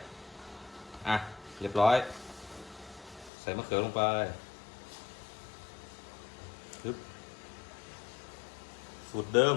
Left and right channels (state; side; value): drops out; right; at 3.3 s